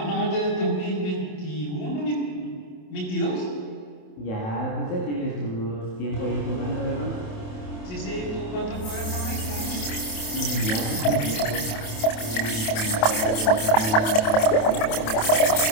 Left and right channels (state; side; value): late; right; 27 ms